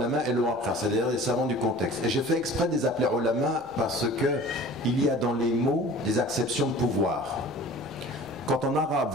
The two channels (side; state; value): both; normal; correlation 0.43